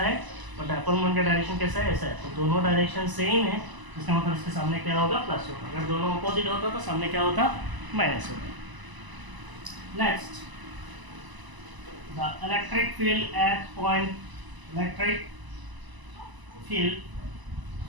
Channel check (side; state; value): left; late; 1.0 ms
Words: और डायपोल मोमेंट का डायरेक्शन कैसा है ऐसा है. तो दोनों डायरेक्शन सेम है. इसका मतलब इसके सामने क्या होगा प्लस होगा. अगर दोनों अपोजिट होता तो सामने क्या होता माइनस होता. Next the electric field at